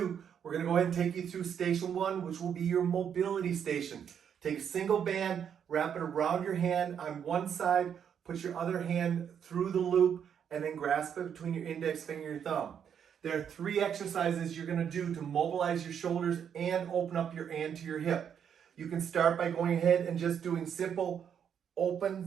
We're going to go ahead and take you through station 1, which will be your mobility station. Take a single band, wrap it around your hand on one side, put your other hand through the loop, and then grasp it between your index finger and your thumb. There are 3 exercises you're going to do to mobilize your shoulders and open up your anterior hip. You can start by going ahead and just doing simple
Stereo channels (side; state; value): left; quieter; 8.2 dB